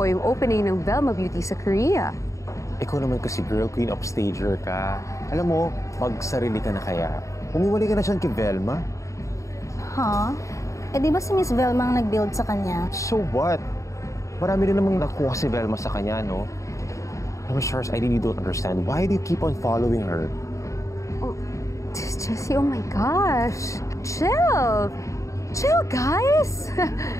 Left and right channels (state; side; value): late; right; 0.15 ms